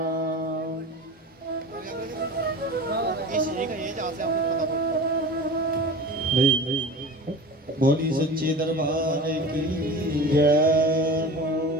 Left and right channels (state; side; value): normal; both; correlation 0.34